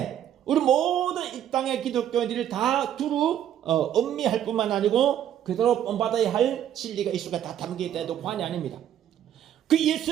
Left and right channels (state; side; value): quieter; left; 10.5 dB